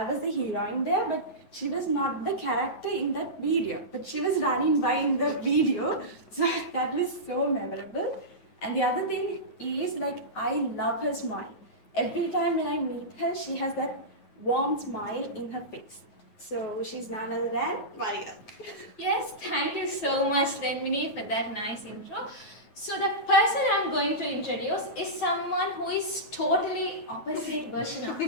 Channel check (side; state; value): right; late; 9.3 ms